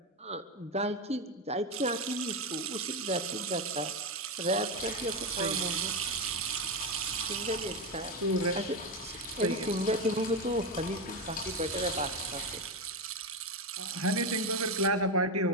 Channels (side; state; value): both; normal; correlation 0.12